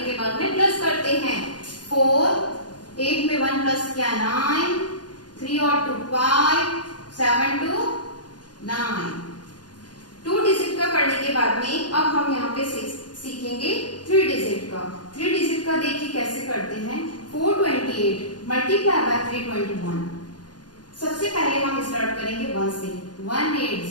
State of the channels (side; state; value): right; late; 0.69 ms